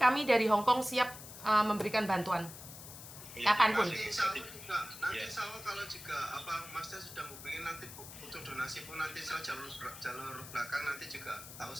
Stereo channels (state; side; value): noise; left; hiss, 13 dB below the sound